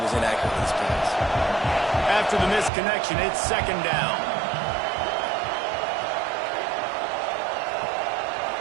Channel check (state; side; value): drops out; left; at 2.7 s